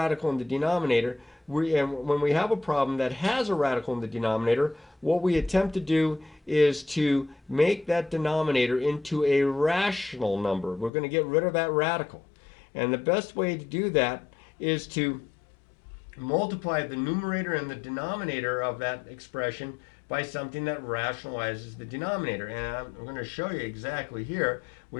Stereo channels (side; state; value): right; drops out; at 10.9 s